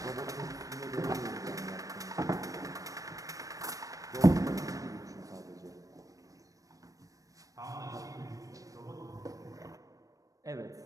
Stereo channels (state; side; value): late; left; 0.16 ms